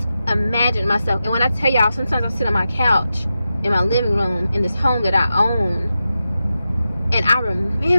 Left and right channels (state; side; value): inverted; both; correlation -0.90